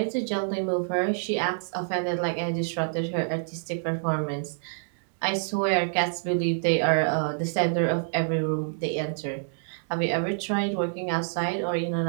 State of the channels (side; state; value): left; silent; digital silence